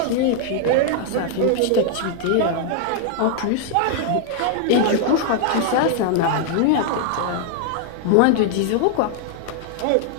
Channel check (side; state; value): both; different; correlation 0.00